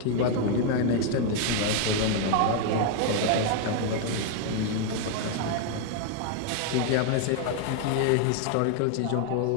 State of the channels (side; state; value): both; different; correlation 0.00